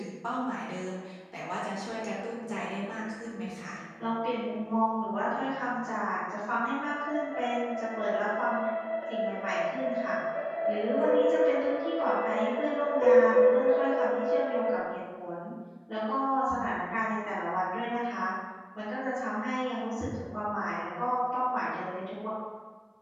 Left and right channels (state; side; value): identical; both; correlation 1.00